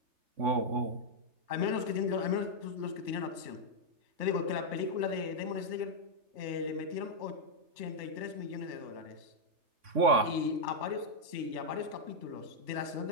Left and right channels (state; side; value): late; left; 3.3 ms